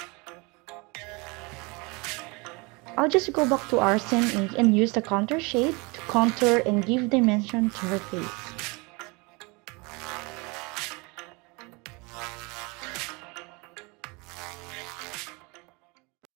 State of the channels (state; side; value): quieter; left; 27.8 dB